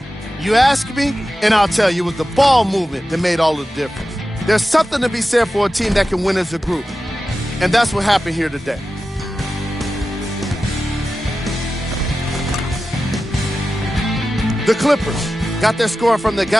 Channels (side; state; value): both; normal; correlation 0.93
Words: You ask me, and I'll tell you, it was the ball movement that made all the difference. There's something to be said for a team that can win as a group, and that's what happened here today. The Clippers got their score from the